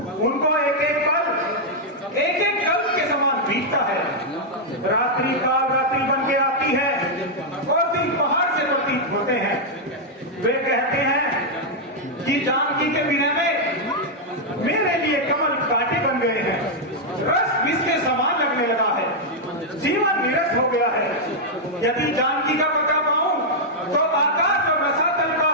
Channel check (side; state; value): both; normal; correlation -0.04